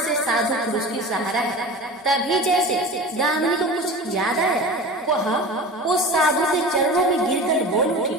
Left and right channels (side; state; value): both; normal; correlation 0.34